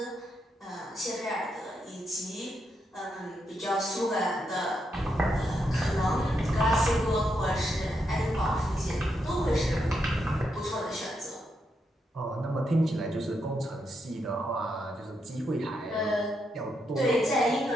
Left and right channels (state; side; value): normal; both; correlation 0.81